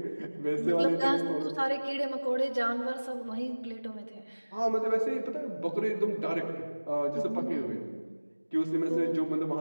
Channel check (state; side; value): inverted; both; correlation -1.00